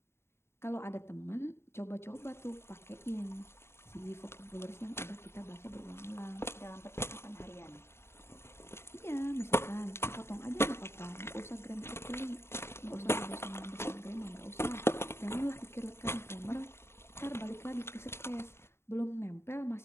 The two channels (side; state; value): right; late; 0.12 ms